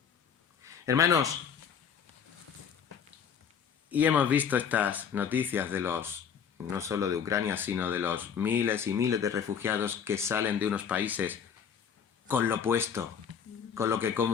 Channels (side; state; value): right; quieter; 7.4 dB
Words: Hermanos, y hemos visto estas noticias de los no solo de Ucrania, sino de los miles y miles de refugiados que salen de unos países con lo puesto, con lo que